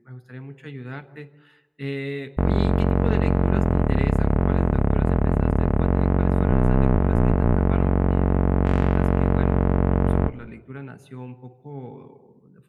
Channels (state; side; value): identical; both; correlation 1.00